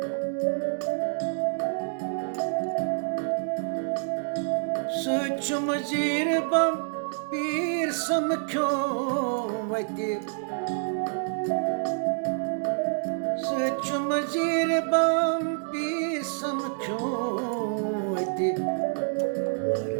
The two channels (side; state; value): left; silent; digital silence